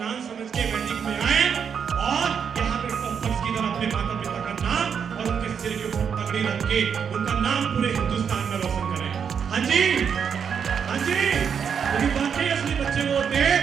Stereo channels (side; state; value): left; quieter; 7.1 dB